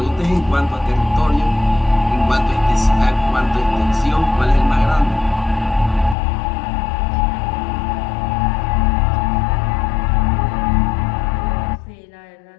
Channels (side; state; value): right; drops out; at 6.2 s